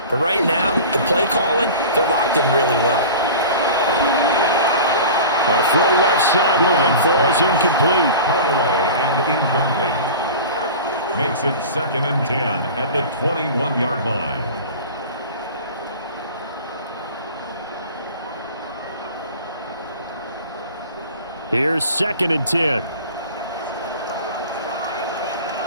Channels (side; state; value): both; inverted; correlation -0.36